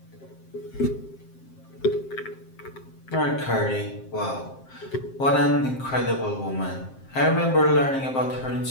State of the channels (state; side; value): late; right; 7.6 ms